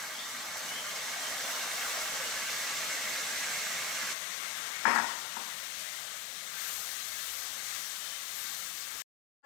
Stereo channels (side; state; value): right; drops out; at 4.2 s